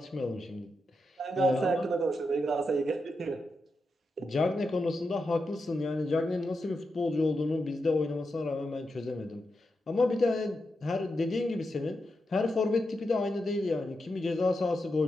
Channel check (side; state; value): both; normal; correlation 0.87